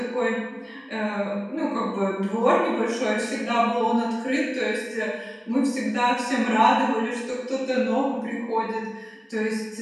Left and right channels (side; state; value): both; identical; correlation 1.00